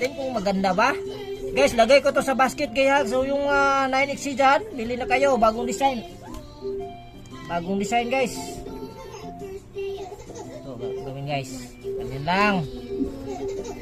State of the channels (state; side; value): identical; both; correlation 1.00